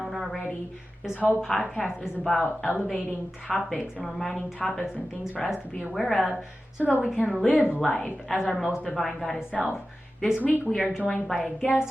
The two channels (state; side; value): normal; both; correlation 0.94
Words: already. This whole podcast is about elevating topics and reminding topics and things for us to be aware of so that we can live life as our most divine goddess self. This week we are joined by a